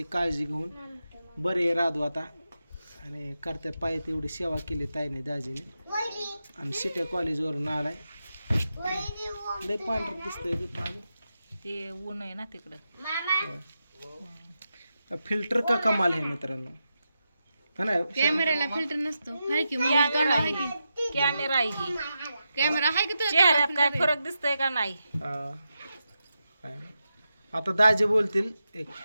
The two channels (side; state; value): both; inverted; correlation -0.88